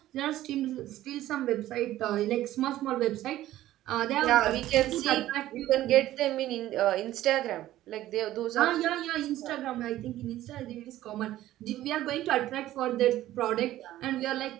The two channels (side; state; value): left; quieter; 14.3 dB